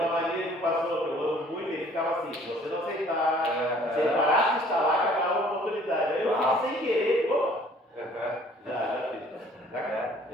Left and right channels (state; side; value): normal; both; correlation 0.56